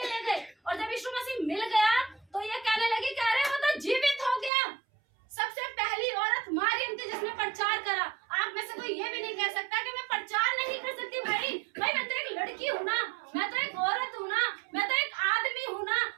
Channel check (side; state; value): left; drops out; at 4.5 s